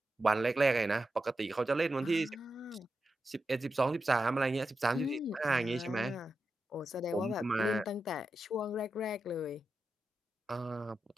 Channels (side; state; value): both; normal; correlation 0.89